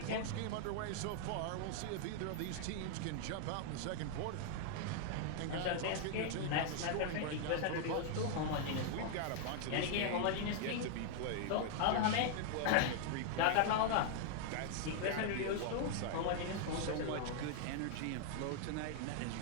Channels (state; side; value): different; both; correlation 0.00